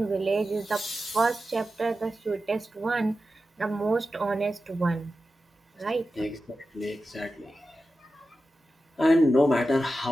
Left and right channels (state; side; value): normal; both; correlation 0.92